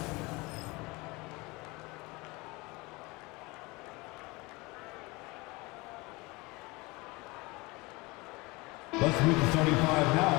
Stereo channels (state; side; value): quieter; right; 24.2 dB